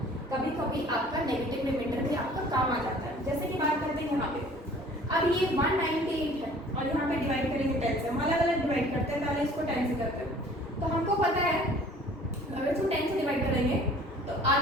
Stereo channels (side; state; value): both; normal; correlation 0.51